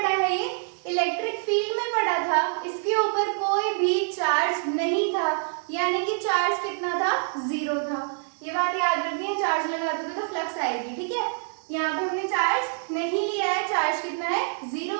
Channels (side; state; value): left; silent; 58 dB below the other